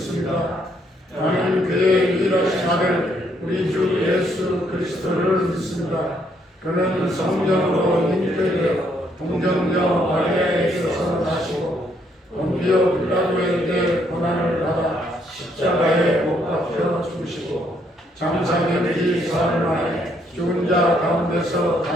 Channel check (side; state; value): both; normal; correlation 0.71